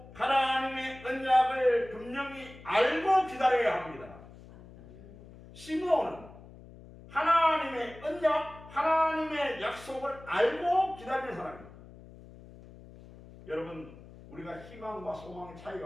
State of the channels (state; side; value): noise; left; hum, 19 dB below the sound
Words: 하나님의 언약을 분명히 알고 기다려야 합니다. 시므온은 하나님의 언약, 하나님의 약속을 알고 기다리는 사람입니다. 여러분 우리가 희망과 소망의